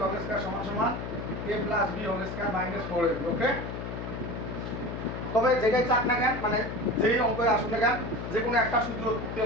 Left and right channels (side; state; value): left; noise; hum, 6 dB below the sound